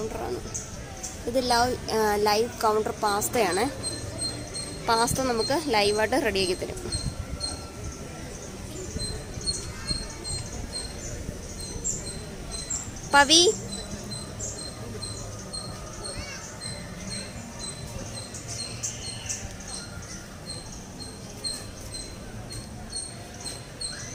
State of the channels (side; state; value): both; identical; correlation 1.00